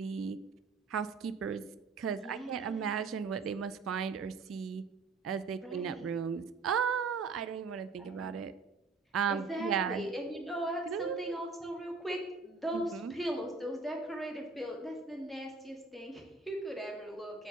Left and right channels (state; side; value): quieter; left; 4.4 dB